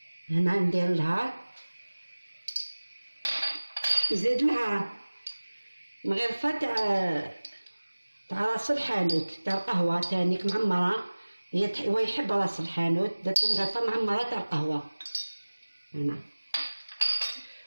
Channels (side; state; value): both; inverted; correlation -1.00